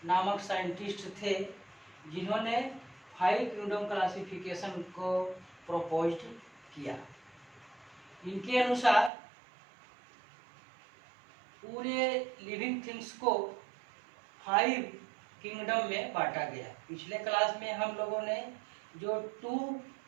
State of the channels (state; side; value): drops out; left; at 9.1 s